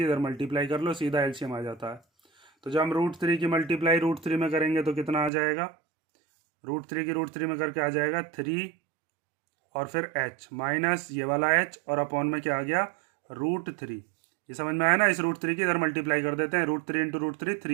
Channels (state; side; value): drops out; left; at 5.3 s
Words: इधर मल्टीप्लाई कर लो, सीधा एलसीएम आ जाता है। तो जब हम √3 की मल्टीप्लाई √3 में करेंगे तो कितना आ जाएगा, √3 की √3 में करके आ जाएगा 3 और फिर h माइनस ये वाला h और अपॉन में क्या आ गया √3। ये समझ में आया ना, इस √3 की इधर मल्टीप्लाई कर देते हैं, √3 इंटू √3